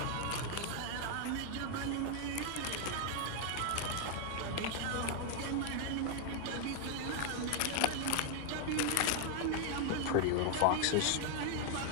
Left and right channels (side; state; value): both; different; correlation 0.00